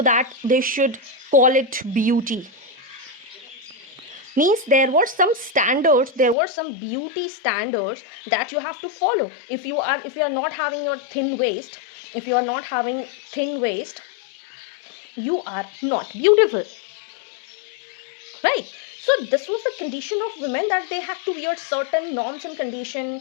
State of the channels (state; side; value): drops out; right; at 6.4 s